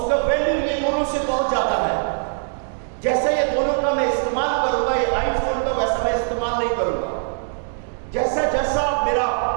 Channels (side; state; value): left; silent; digital silence